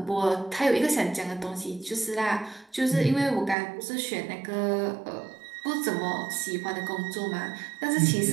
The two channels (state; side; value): drops out; left; at 3.6 s